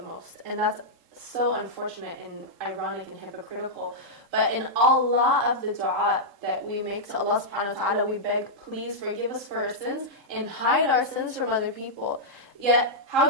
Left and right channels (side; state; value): left; late; 3.7 ms